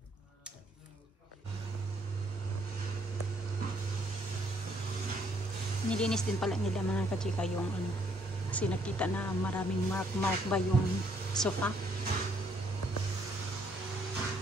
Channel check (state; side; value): normal; both; correlation 0.68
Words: Nilinis din pala nila mga kachika yung kasi nakita na maraming mark ba yung sofa.